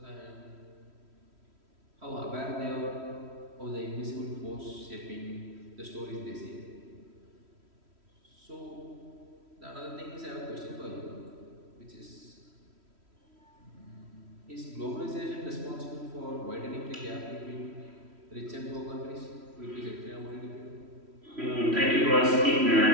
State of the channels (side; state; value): left; late; 3.1 ms